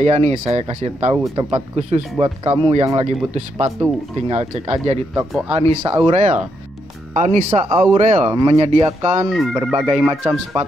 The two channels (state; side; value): normal; both; correlation 0.79